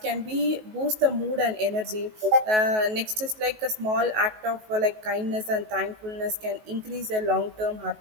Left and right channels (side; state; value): left; late; 19 ms